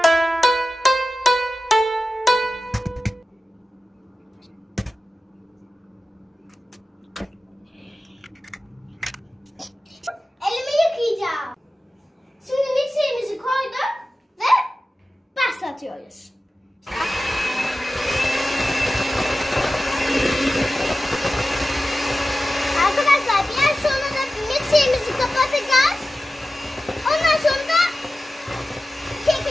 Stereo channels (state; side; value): normal; both; correlation 0.94